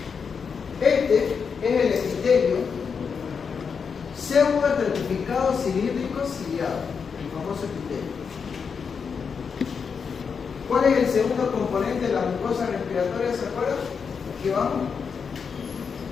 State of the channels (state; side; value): quieter; right; 6.0 dB